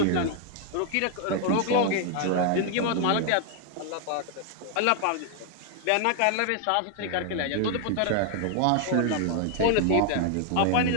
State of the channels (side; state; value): both; different; correlation 0.00